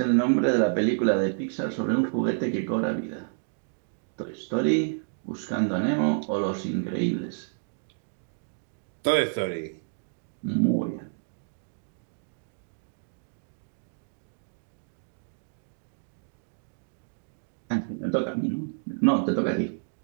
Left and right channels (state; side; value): silent; left; digital silence